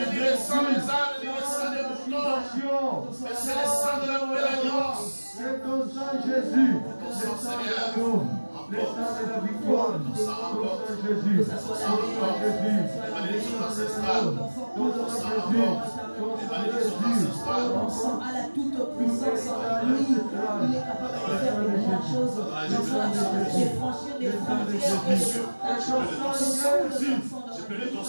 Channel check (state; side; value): inverted; both; correlation -1.00